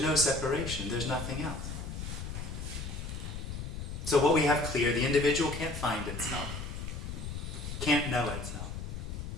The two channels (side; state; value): left; noise; rumble, 6 dB below the sound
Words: no separation. There's nothing else. So what we have clear, the individual can't find itself, can't know itself.